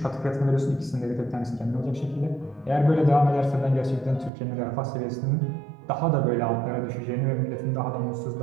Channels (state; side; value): drops out; left; at 4.3 s